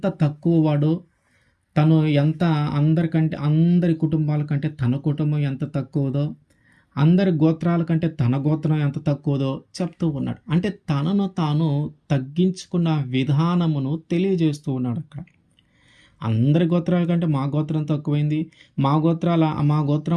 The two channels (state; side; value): identical; both; correlation 1.00